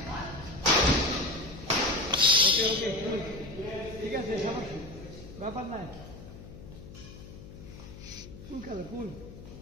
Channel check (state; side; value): noise; left; hum, 15 dB below the sound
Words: ঠিক আছে ব্যাপার নাই কুল খেলো কুল